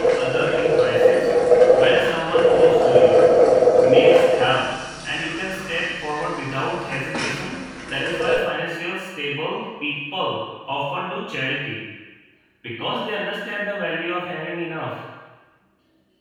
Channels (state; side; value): identical; both; correlation 1.00